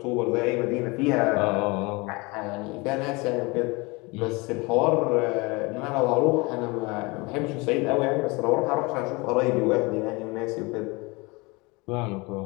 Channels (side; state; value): right; quieter; 25.8 dB